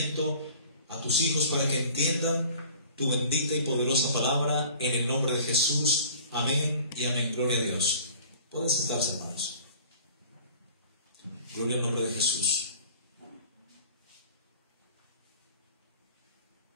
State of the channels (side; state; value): both; inverted; correlation -0.47